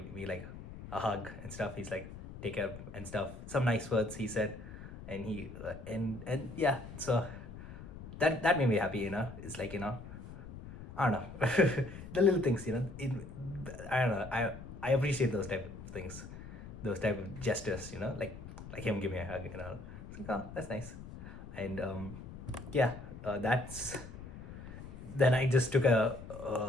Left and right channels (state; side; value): noise; left; rumble, 13 dB below the sound